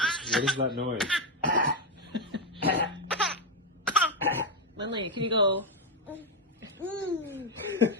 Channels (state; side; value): normal; both; correlation 0.04